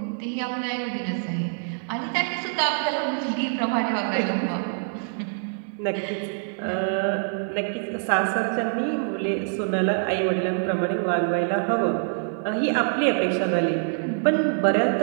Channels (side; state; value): left; silent; digital silence